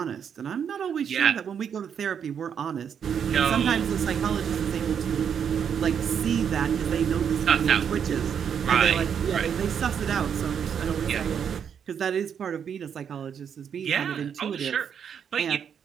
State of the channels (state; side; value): quieter; left; 7.8 dB